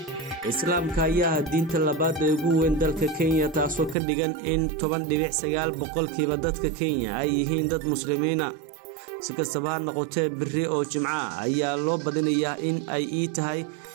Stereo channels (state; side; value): drops out; left; at 4.0 s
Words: islaamka ayaa diinta labaad ee ugu weyn dalka Kenya taasoo ka dhigan in 10.9% dadka Kenya ay yihiin dad muslimiina si kastaba ha noqotee beri oo Jimca ayaa loo badinayaa in ay tahay